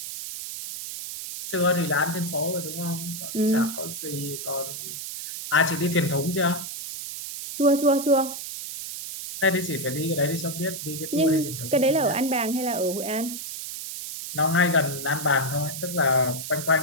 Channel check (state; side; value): noise; right; hiss, 7 dB below the sound